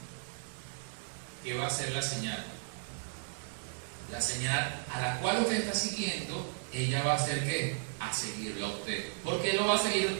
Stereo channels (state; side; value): silent; left; digital silence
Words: ¿Qué va a ser la señal? La señal a la cual usted está siguiendo, ella va a hacer ¿qué? A seguirlo a usted. ¿Por qué lo va a seguir a